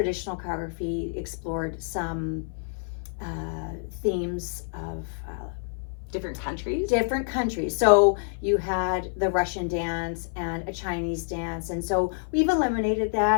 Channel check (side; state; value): right; silent; 55 dB below the other